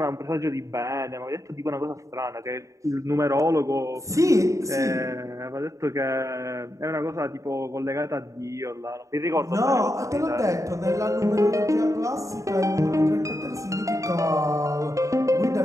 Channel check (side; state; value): left; late; 0.15 ms